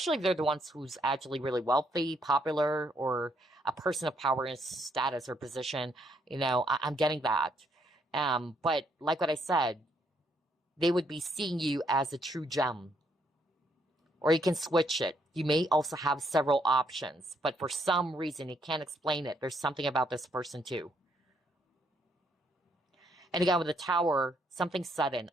if they're the ones who's actually really wealthy, popular, or a person of power and status or position. You know, I'm getting that. But like what I said, they would be seeing you as a true gem. Or you can switch it. You may also have several options. But for some reason, you can't explain it. There's something about this person too. And again, with the Tower, something sudden.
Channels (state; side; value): normal; both; correlation 0.72